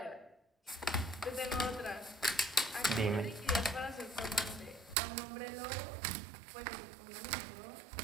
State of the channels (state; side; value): drops out; left; at 5.0 s